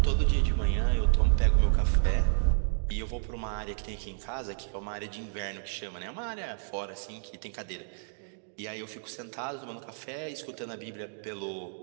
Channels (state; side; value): silent; left; digital silence